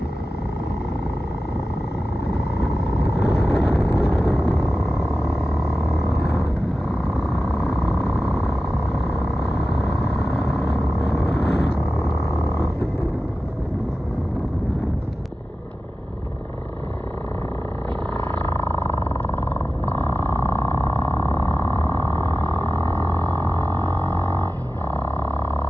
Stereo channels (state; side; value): normal; both; correlation 0.94